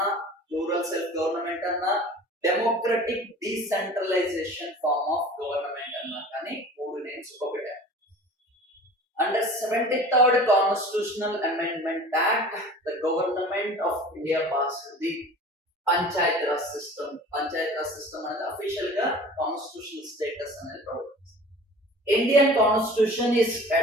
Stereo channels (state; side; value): normal; both; correlation 0.42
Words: రూరల్ సెల్ఫ్ గవర్నమెంట్ అన్నా, democratic decentralisation form of government అన్నా కానీ మూడు నేమ్స్ ఒకటే. Under 73rd Constitutional Amendment Act, the Government of India passed the Panchayat Raj system. Panchayat Raj system అనేది official గా constitutional status అనేది provide చేస్తుంది. Indian Constitution is